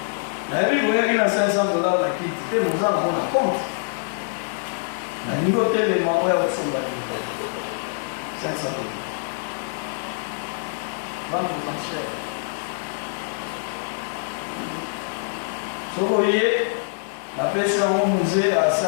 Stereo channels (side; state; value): right; silent; 59 dB below the other